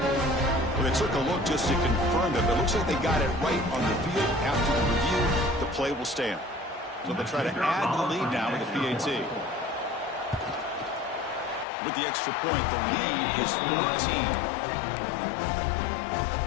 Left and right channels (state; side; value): drops out; right; at 11.7 s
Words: They took a look just to confirm it, but it looks like they got it right on the field. After the review, the play will stand. So they'll try to add to the lead now with the PAT. With the extra point, the lead is 14.